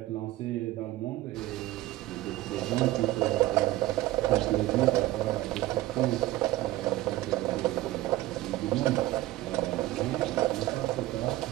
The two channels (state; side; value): quieter; left; 16.7 dB